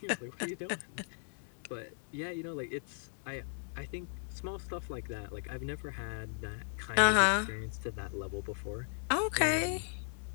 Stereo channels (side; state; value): right; silent; digital silence